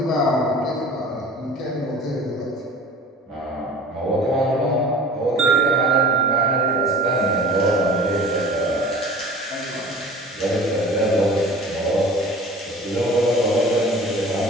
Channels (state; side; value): normal; both; correlation 0.42